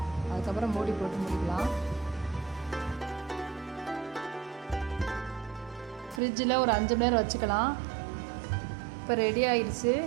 அதுக்கப்புறம் மூடி போட்டு முடிக்கலாம். ஃப்ரிட்ஜில் ஒரு 5 மணி நேரம் வச்சுக்கலாம். இப்போ ரெடி ஆகிடுச்சு.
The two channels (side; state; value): left; drops out; at 6.2 s